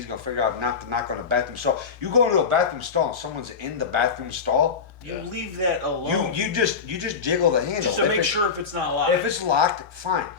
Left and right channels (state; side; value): quieter; right; 5.8 dB